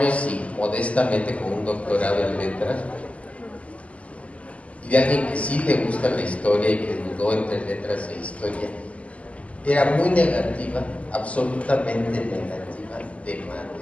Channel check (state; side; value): late; right; 0.066 ms